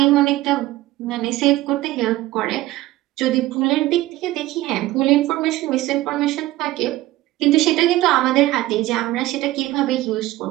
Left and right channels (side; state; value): left; quieter; 17.0 dB